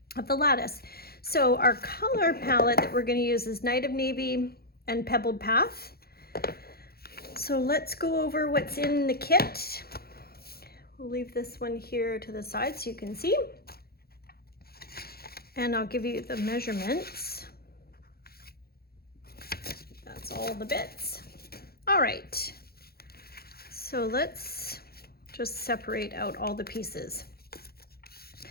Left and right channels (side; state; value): right; late; 0.45 ms